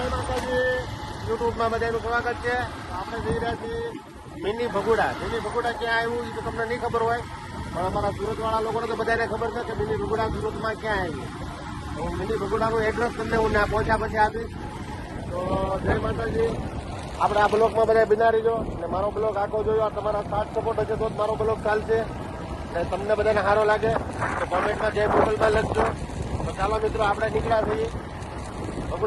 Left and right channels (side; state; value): both; identical; correlation 1.00